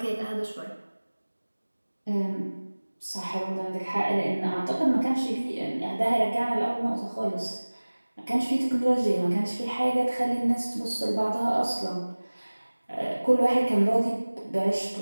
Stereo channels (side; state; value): both; inverted; correlation -1.00